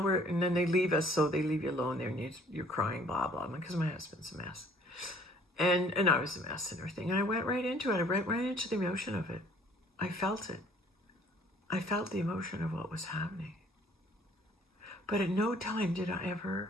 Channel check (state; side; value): normal; both; correlation 0.57